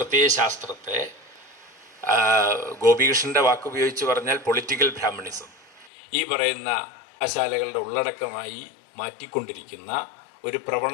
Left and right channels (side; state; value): right; drops out; at 5.9 s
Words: ഗോപികൃഷ്ണൻ്റെ വാക്കുപയോഗിച്ച് പറഞ്ഞാൽ പൊളിറ്റിക്കൽ ബ്രാഹ്മണിസം, ഈ പറയുന്ന കലാശാലകളുടെ ഉള്ളടക്കമായി മാറ്റിക്കൊണ്ടിരിക്കുന്ന ഒരു